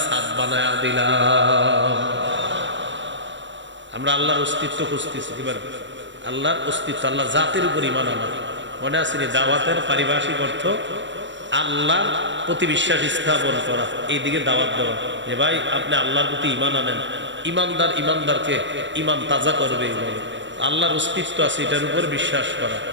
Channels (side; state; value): left; late; 0.53 ms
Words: ছাদ বানায়া দিলাম। আমরা আল্লাহর অস্তিত্ব খুঁজতেছি। এবার আল্লাহর অস্তিত্ব, আল্লাহ জাতের উপর ঈমান আনা। মনে আছে দাওয়াতের পারিভাষিক অর্থ আল্লাহর প্রতি বিশ্বাস স্থাপন করা, এইদিকে দাওয়াত দেওয়া যে ভাই আপনি আল্লাহর প্রতি ঈমান আনেন। ঈমানদার ঈমানদারকে ঈমান তাজা করবে। এইভাবে আল্লাহর অস্তিত্ব আছে এটার উপর বিশ্বাস করা।